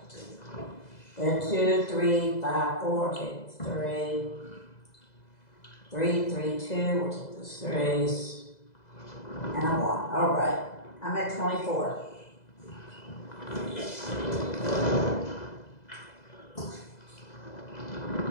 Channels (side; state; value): right; late; 2.0 ms